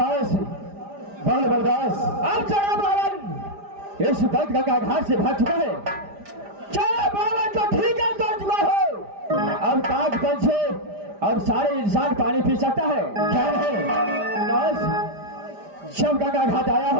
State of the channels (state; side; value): late; left; 5.0 ms